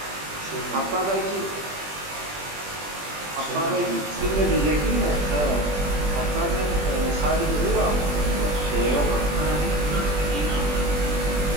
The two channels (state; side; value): late; left; 20 ms